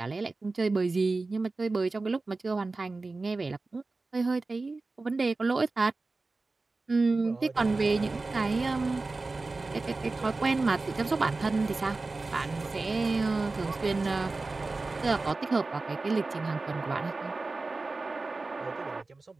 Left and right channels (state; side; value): quieter; left; 3.5 dB